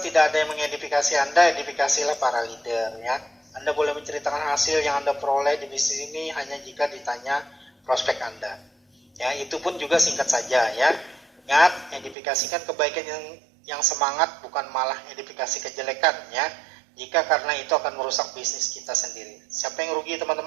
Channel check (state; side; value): drops out; left; at 12.2 s